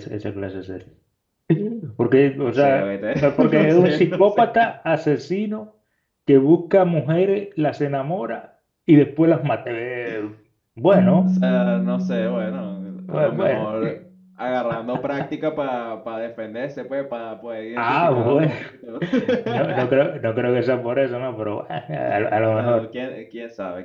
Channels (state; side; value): identical; both; correlation 1.00